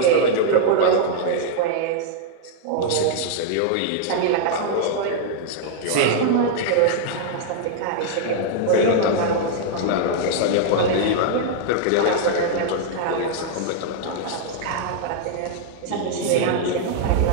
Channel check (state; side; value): different; both; correlation -0.01